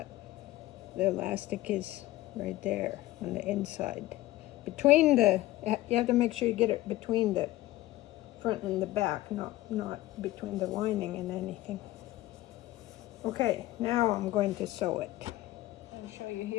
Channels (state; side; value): quieter; right; 16.8 dB